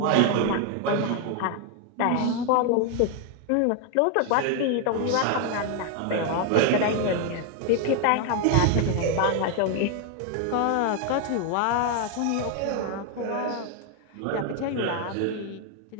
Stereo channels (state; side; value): different; both; correlation 0.01